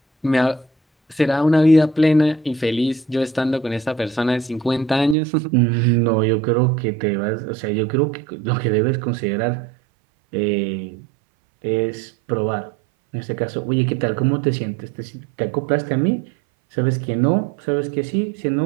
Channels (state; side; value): drops out; left; at 5.2 s